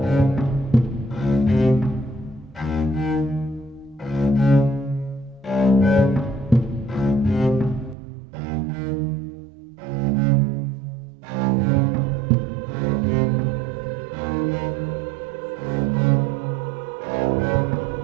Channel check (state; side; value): drops out; left; at 8.0 s